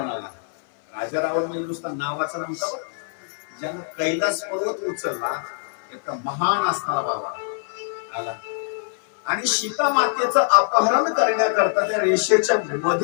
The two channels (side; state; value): right; silent; 59 dB below the other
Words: आला. राजा रावण म्हणजे नुसता नावाचा नव्हता, ज्यानं कैलास पर्वत उचलला, एक महान असणारा बाबा आला आणि सीता मातेचं अपहरण करण्याकरता त्या रेषेच्या